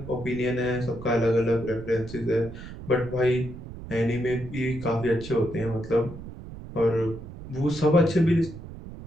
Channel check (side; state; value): right; noise; rumble, 13 dB below the sound